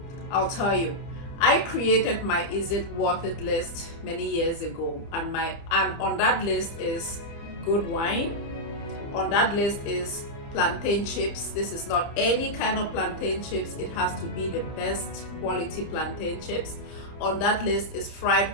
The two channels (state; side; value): late; right; 29 ms